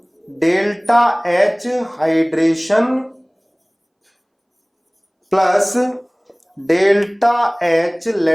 delta H hydration plus delta H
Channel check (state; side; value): identical; both; correlation 1.00